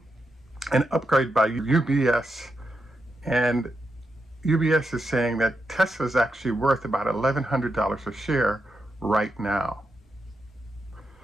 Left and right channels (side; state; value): both; normal; correlation 0.85